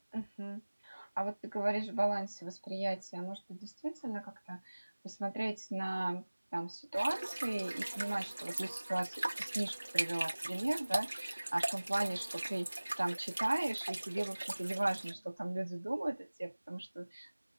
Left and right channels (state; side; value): inverted; both; correlation -1.00